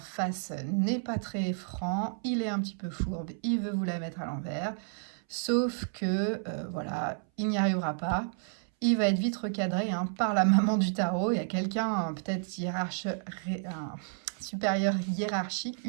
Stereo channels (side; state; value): left; silent; 57 dB below the other